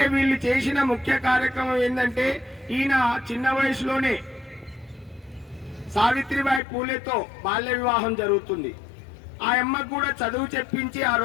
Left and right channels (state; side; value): drops out; right; at 6.6 s